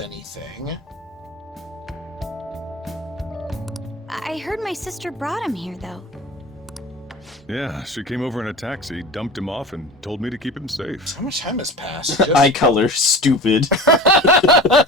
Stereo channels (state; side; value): normal; both; correlation 0.35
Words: anything. I heard my sister brought him here, though. Yeah, she came over in a taxi, dumped him off, and told me to keep him safe. How much time has passed? Eye color, stupid.